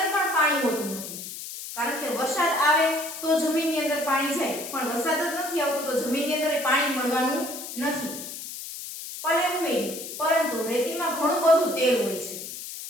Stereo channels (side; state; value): left; noise; hiss, 9 dB below the sound